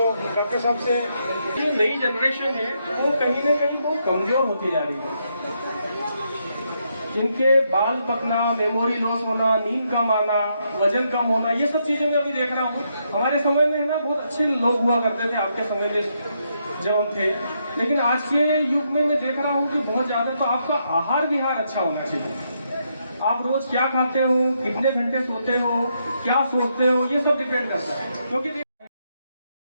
डॉक्टर साहब से, जो नई जनरेशन है वो कहीं ना कहीं बहुत कमजोर होती जा रही है। जिनके बाल पकना, मेमोरी लॉस होना, नींद कम आना, वजन कम होना, ये सब चीजें मैं अभी देख रहा हूँ। हमारे समय में ना बहुत अच्छे लोग हुआ करते थे, आपके समय में जब हम थे, लेकिन आज के युग में मैं देख रहा हूँ कि बहुत ज्यादा। तो आपका आहार विहार अच्छा होना चाहिए। आप रोज क्या खाते हो, कितने घंटे सोते हो, क्या सोचते हो, ये सब डिपेंड करता है। क्योंकि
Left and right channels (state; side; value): inverted; both; correlation -0.78